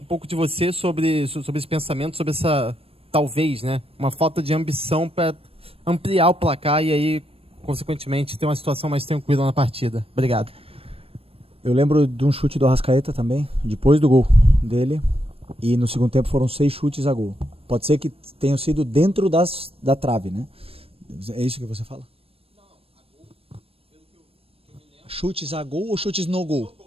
de você sobre esse pensamento, sobre essa, talvez, né, uma falta de ambição para ampliar o placar e aí, consequentemente, ter uma situação mais tranquila na partida. Obrigado. Eu lembro de um chute do Arrascaeta também, depois do gol dele, e no segundo tempo foram 6 chutes a gol. Pode ser que tenham sido dentro da trave, né? É isso que você fala? Não, a gol, pelo que eu me lembro. Chutes a gol ou chutes no gol? No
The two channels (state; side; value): late; left; 0.28 ms